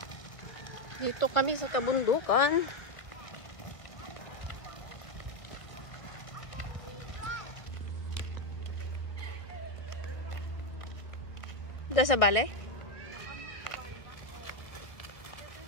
Dito kami sa kabundukan. Dito sa bale?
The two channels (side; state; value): right; late; 1.3 ms